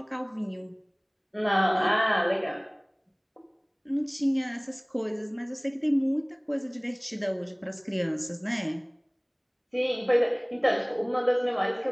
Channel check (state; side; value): identical; both; correlation 1.00